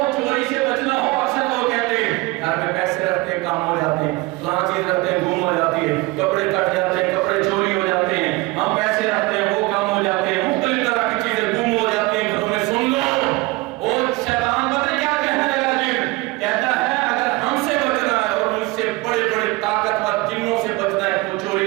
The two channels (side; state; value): left; quieter; 22.7 dB